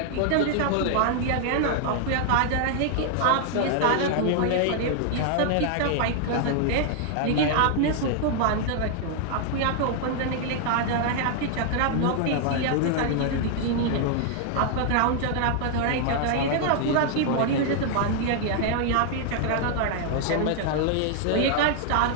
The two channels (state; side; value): different; both; correlation 0.00